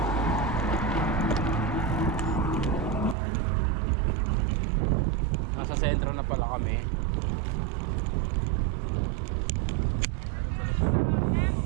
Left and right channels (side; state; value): left; drops out; at 3.2 s